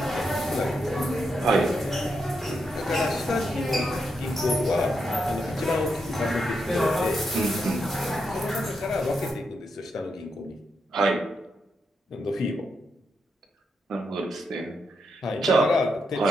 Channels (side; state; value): both; normal; correlation 0.83